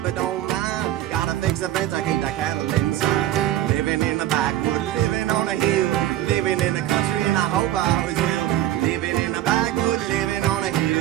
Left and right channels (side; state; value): left; quieter; 13.2 dB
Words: don't mind, gotta fix the fence, I keep the cattle inside. Living in the backwoods, living on a hill, living in the country, and I hope I always will. Living in the backwoods, living on a